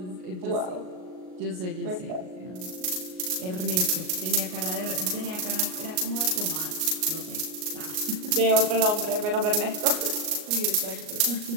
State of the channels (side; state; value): left; late; 38 ms